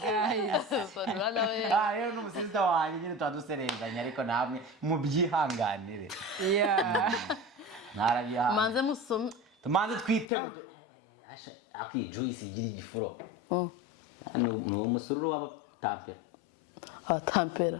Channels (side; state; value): right; drops out; at 10.2 s